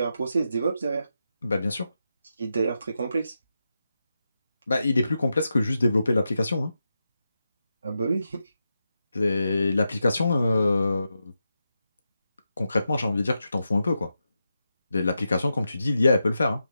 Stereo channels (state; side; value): inverted; both; correlation -0.88